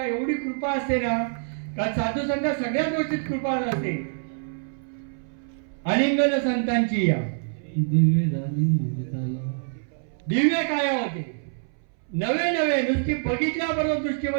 एवढी कृपा असते ना, का साधू संत सगळ्या गोष्टीत कृपा असते. अलिंगन संतांची या दिव्य काय होते, नवे नवे नुसती बघितल्याबरोबर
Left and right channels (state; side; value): silent; left; 60 dB below the other